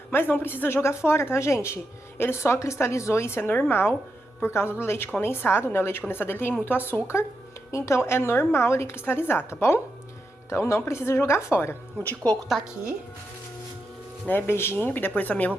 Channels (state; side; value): normal; both; correlation 0.86